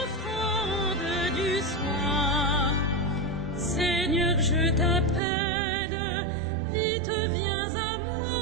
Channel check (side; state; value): left; drops out; at 5.2 s